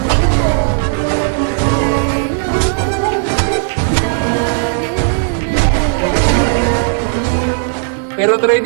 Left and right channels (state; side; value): silent; left; digital silence